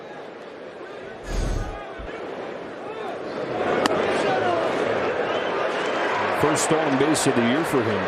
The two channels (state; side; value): identical; both; correlation 1.00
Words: First stolen base of the year for him,